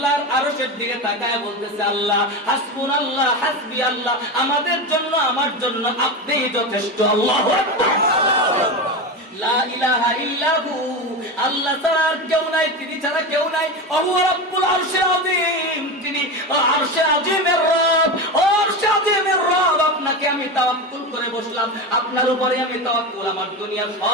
আরশের দিকে তাকায় বলতেছে, আল্লাহ হাসবুনাল্লাহ হাসবি আল্লাহ, আমাদের জন্য আমার জন্য আপনিই যথেষ্ট। আল্লাহু আকবার। লা ইলাহা ইল্লাহু, আল্লাহ ছাড়া আর কেউ নাই, তিনি ছাড়া কেউ নাই। ওহু রাব্বুল আরশিল আযীম, তিনি আরশে আযীমের রব। ও আরশে আযীমের রব, আপনাকে আমি তাওয়াক্কুল করে বসলাম, আপনার উপরে আমি তাওয়াক্কুল। আমার দুনিয়ার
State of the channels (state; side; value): normal; both; correlation 0.20